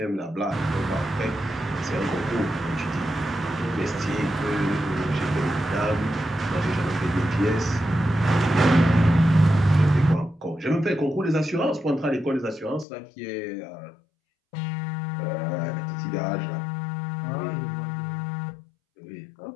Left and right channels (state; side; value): drops out; right; at 12.9 s